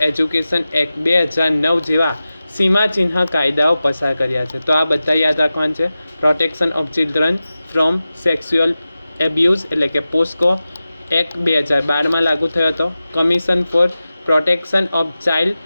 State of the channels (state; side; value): inverted; both; correlation -0.95